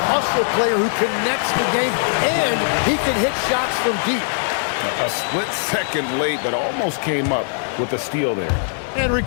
player who connects the game, and he can hit shots from deep. A split second late, but almost came up with a steal there. And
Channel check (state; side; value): silent; right; 63 dB below the other